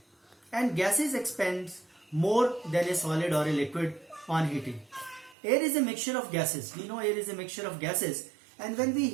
And gases expand more than a solid or a liquid on heating. Air is a mixture of gases. We know air is a mixture of gases, and when we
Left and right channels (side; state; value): left; drops out; at 5.4 s